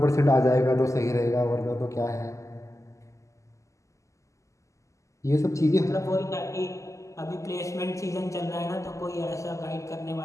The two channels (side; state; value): right; late; 0.15 ms